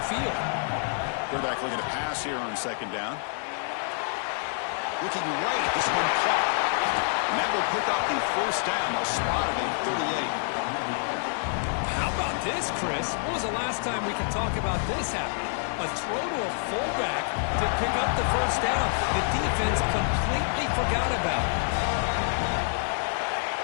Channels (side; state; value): right; silent; 60 dB below the other